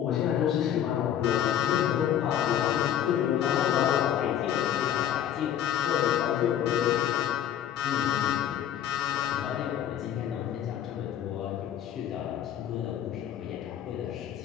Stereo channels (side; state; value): right; quieter; 10.4 dB